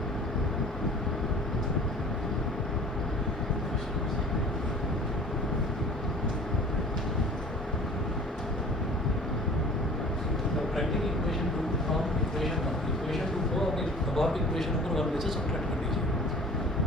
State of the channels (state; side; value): normal; both; correlation 0.47